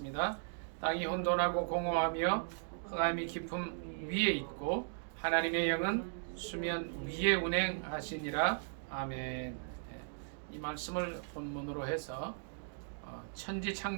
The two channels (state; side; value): silent; left; digital silence